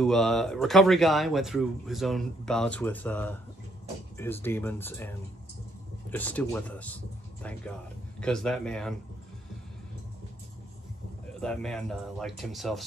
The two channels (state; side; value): normal; both; correlation 0.70